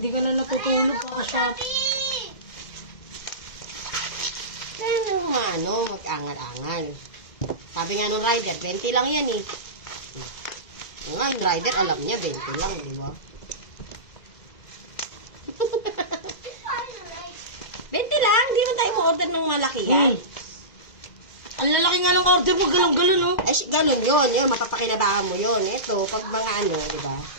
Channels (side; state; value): right; late; 2.0 ms